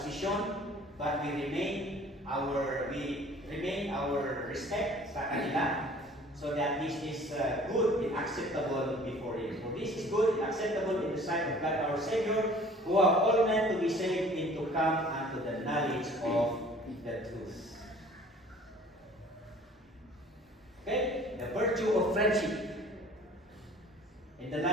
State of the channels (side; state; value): both; normal; correlation 0.50